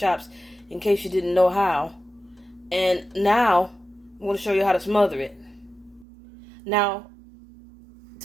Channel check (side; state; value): left; drops out; at 6.1 s